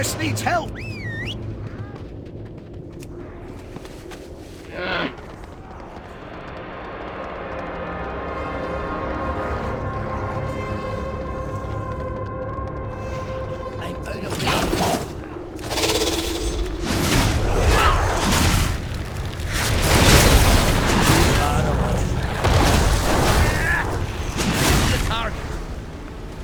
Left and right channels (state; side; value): identical; both; correlation 1.00